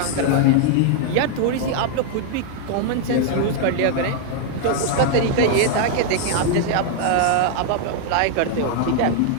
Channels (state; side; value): different; both; correlation 0.00